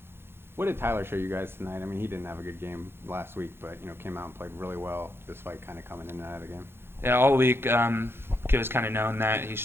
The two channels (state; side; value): late; left; 0.11 ms